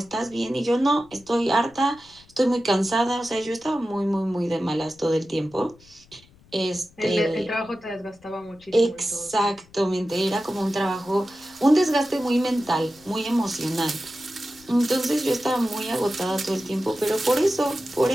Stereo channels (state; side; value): noise; left; rumble, 28 dB below the sound